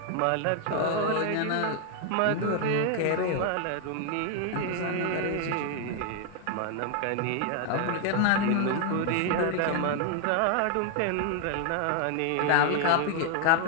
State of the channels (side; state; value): both; different; correlation 0.00